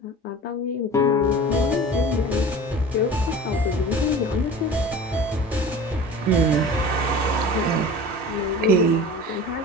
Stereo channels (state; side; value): normal; both; correlation 0.38